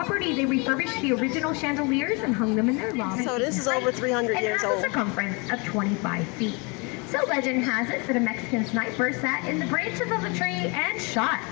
they refurbished the original chandeliers and hung them in their lobby. So this is over 300 years old. old. It has a circumference of 25 feet. So legend has it that a Mexican sniper sat in the branches of the tree and shot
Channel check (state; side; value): quieter; right; 30.3 dB